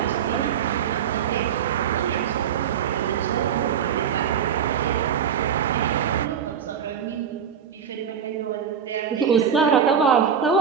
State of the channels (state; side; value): quieter; left; 7.9 dB